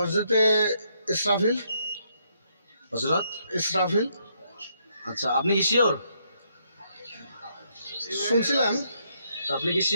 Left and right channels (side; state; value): both; inverted; correlation -0.74